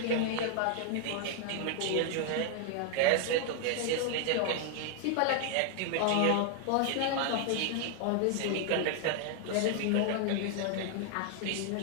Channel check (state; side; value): different; both; correlation 0.00